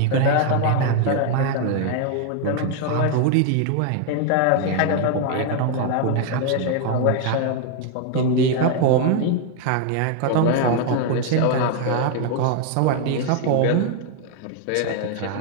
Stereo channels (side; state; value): both; different; correlation 0.00